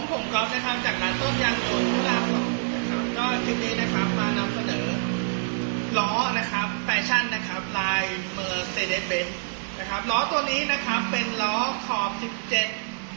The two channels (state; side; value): silent; left; digital silence